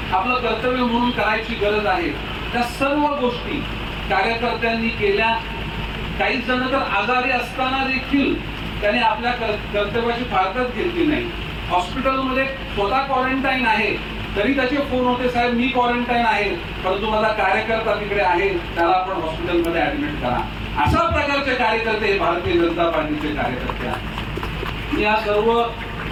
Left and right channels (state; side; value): identical; both; correlation 1.00